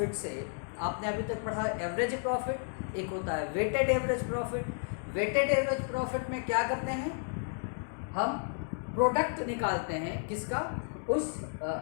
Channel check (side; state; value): right; silent; 56 dB below the other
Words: से आपने अभी तक पढ़ा average profit, एक होता है weighted average profit. Weighted average profit में क्या करते हैं, हम प्रोडक्ट निकालते हैं किसका, उस